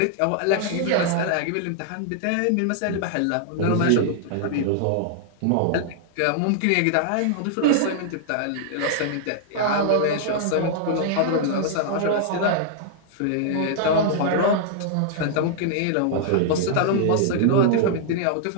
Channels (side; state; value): both; different; correlation -0.01